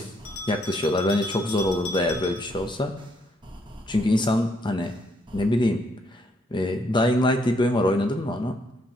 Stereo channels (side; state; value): both; normal; correlation 0.71